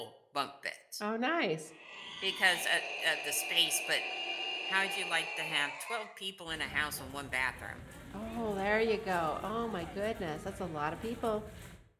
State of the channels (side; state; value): both; identical; correlation 1.00